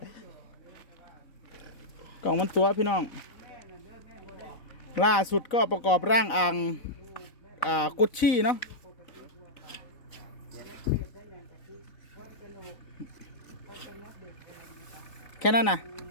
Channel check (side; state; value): right; late; 4.0 ms